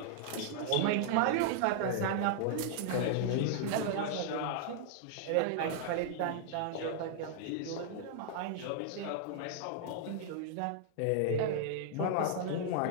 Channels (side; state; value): both; different; correlation -0.01